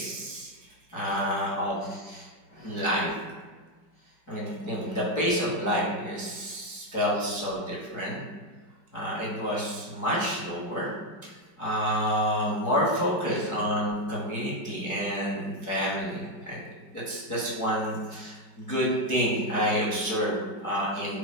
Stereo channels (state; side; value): late; right; 5.2 ms